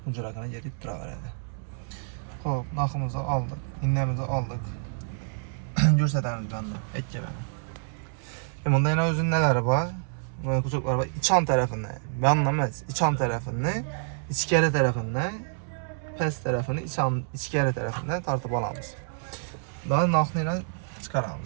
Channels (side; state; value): left; silent; 59 dB below the other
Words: hujragina yerib turaveradi. Hop, narximizni aldık, innemizni aldık. Ko'rsatamiz bunda, aytgan. Bunda yana o'zining nalari bor. Mana kuchuklar bor. İçan tarafından, ben emas, içan tarafını, ichkari tarafından, past tarafını ichkari tarafından tartib olamiz. Daha narxni yana